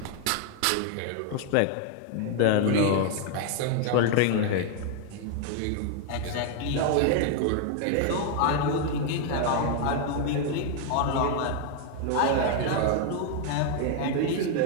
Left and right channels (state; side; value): different; both; correlation 0.00